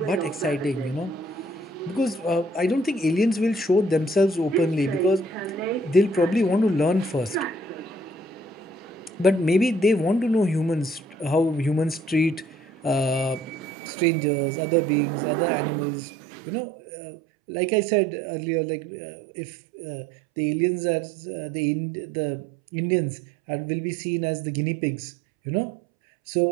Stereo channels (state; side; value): drops out; left; at 13.7 s